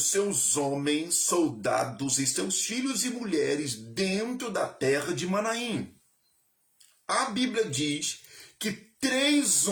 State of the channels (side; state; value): both; identical; correlation 1.00